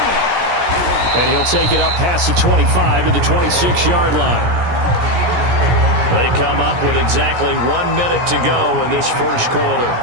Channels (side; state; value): left; late; 17 ms